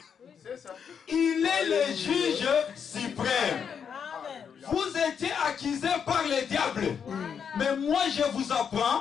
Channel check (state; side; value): quieter; right; 7.2 dB